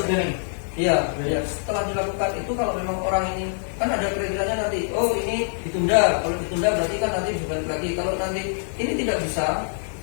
Iya, setelah dilakukan itu kalau memang orang ini kan ada kriterianya nanti, oh ini ditunda, kalau ditunda berarti kan nanti bisa balik lagi. Kalau nanti ini tidak bisa,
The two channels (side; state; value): right; silent; digital silence